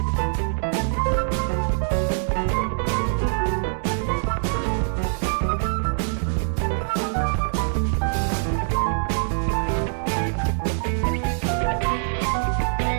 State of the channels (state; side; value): silent; left; digital silence